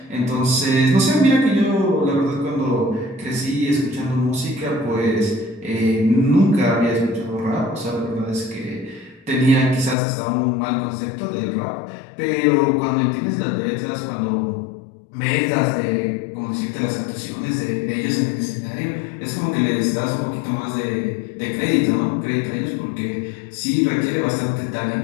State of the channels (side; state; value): right; drops out; at 10.0 s